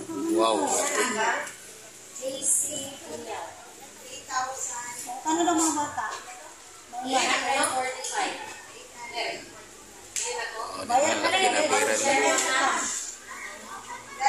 Wow. Ano daw mga bata? Bayan ka na yung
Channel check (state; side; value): identical; both; correlation 1.00